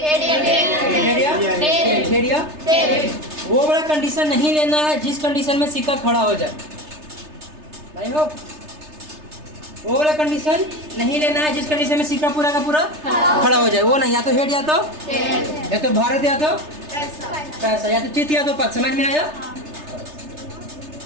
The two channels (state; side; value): late; left; 3.3 ms